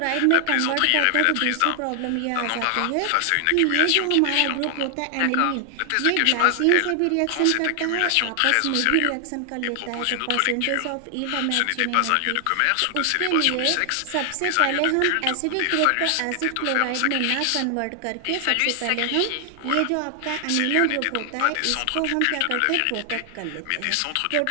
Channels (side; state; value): both; different; correlation 0.00